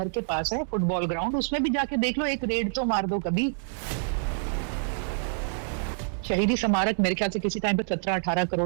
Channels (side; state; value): left; silent; 60 dB below the other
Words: के पास है, फुटबॉल ग्राउंड, उसमें भी जाके देख लो, एक रेड तो मार दो कभी। शहीदी स्मारक मेरे ख्याल से किसी टाइम पे 17-18